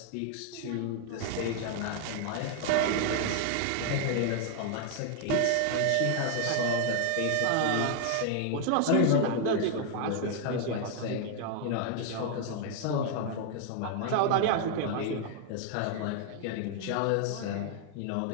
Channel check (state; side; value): different; both; correlation 0.00